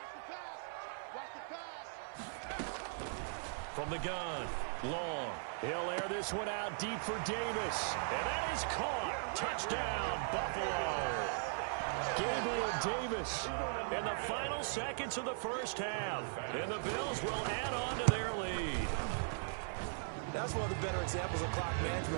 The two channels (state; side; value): silent; left; 52 dB below the other